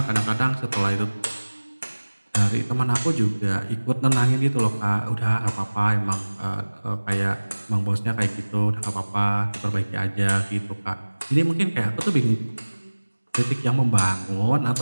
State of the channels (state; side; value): inverted; both; correlation -1.00